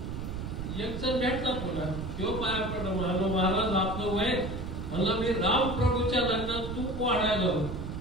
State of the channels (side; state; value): right; noise; rumble, 6 dB below the sound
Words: एक जण भेटला पुन्हा, तो पाया पडला. म्हणालो महाराज आपलं वय, म्हणला मी रामप्रभूच्या लग्नात तूप वाढायला होत.